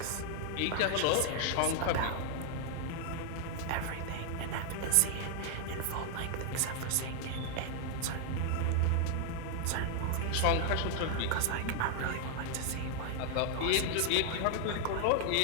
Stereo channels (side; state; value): both; different; correlation 0.00